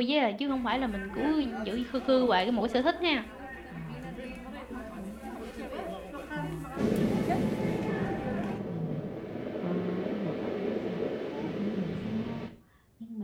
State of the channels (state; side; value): identical; both; correlation 1.00